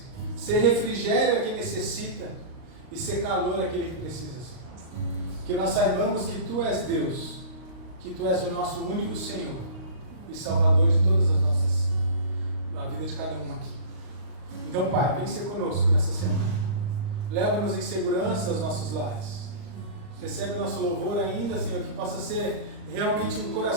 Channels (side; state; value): left; late; 39 ms